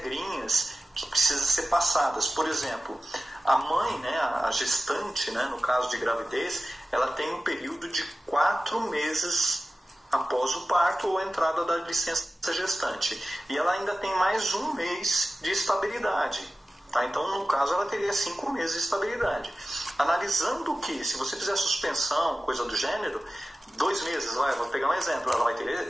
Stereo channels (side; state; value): both; normal; correlation 0.95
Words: que precisam ser passadas. Por exemplo, a mãe, né, a gestante, né, no caso de gravidez, ela tem um período de 4 meses após o parto ou a entrada da licença gestante. E ela ainda tem mais 1 mês de estabilidade. Tá? Então, no caso, ela teria 5 meses de estabilidade. Analisando que, se você fizer suspensão, coisa do gênero, 2 meses, vou pegar um exemplo, ela vai